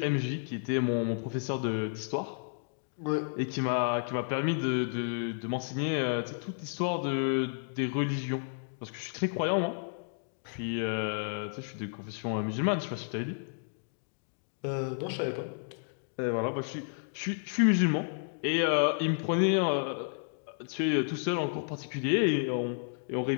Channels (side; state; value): right; silent; digital silence